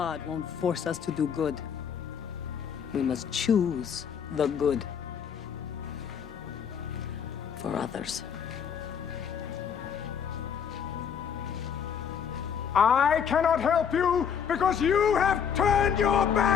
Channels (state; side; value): quieter; right; 7.6 dB